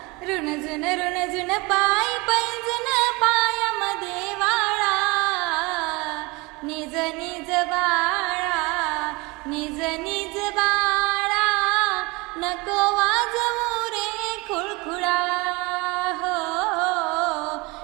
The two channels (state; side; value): quieter; left; 25.4 dB